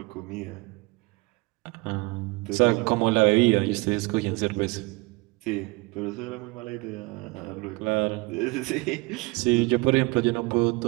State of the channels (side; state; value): left; quieter; 25.0 dB